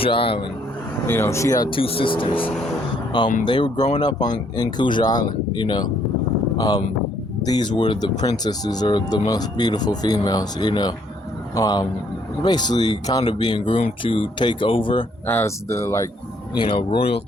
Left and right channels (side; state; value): both; normal; correlation 0.67